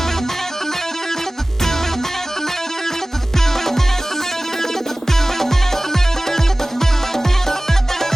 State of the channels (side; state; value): both; normal; correlation 0.98